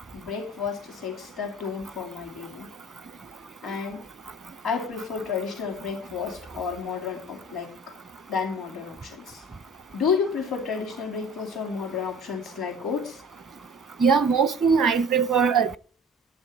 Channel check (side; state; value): both; normal; correlation 0.44